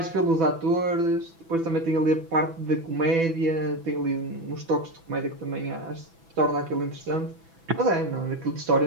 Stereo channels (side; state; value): left; late; 6.0 ms